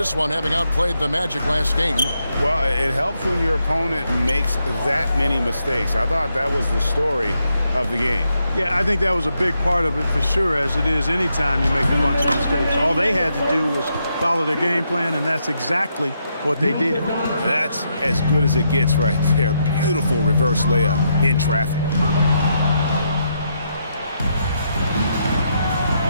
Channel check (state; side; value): inverted; both; correlation -0.79